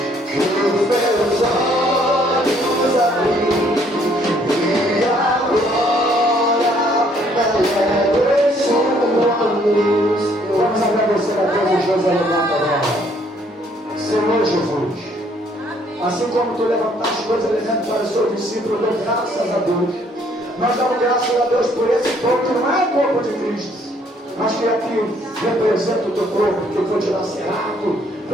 Vamos agradecer a Deus e Deus levanta agora. Senhor Jesus, assim como tu levantaste dois elementos para o seu discípulo, eu dou graças a Deus. Nós damos graças a Deus por esse corpo que não é o corpo de Cristo, mas que aqui representa o teu corpo, que foi dilacerado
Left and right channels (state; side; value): normal; both; correlation 0.65